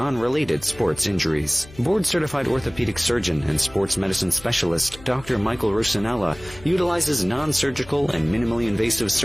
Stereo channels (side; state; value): left; noise; hum, 20 dB below the sound